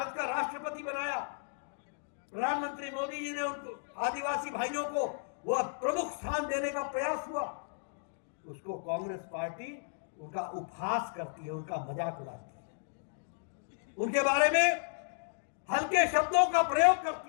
का राष्ट्रपति बनाया, प्रधानमंत्री मोदी जी ने उनको आदिवासी भाइयों को वह प्रमुख स्थान देने का प्रयास हुआ, उसको कांग्रेस पार्टी उनका उपहास करती है, उनका मजाक उड़ाती है, उनके बारे में हल्के शब्दों का प्रयोग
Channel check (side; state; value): right; silent; digital silence